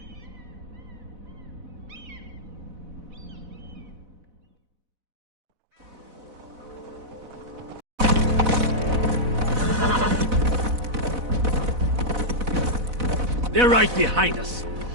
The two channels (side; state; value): left; late; 4.0 ms